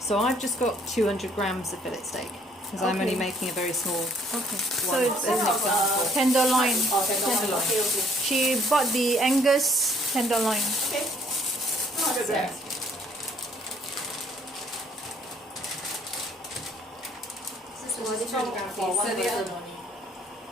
I've just got 200 grams of fillet steak because I'm only Okay. making a very small Okay. So one. it's As an example. tenderloin. Oh, tenderloin. Okay. She bought the Angus tenderloin. Okay. 200 grams. So this is 200 grams for each. one So the person other- only.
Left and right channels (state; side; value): normal; both; correlation 0.62